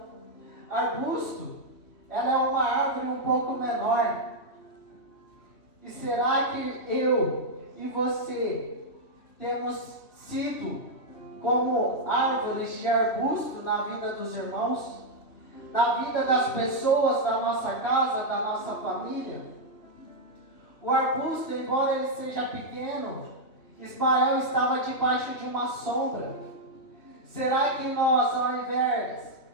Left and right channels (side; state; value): right; late; 3.3 ms